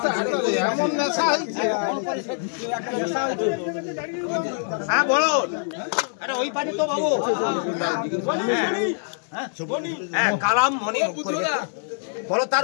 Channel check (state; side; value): silent; right; digital silence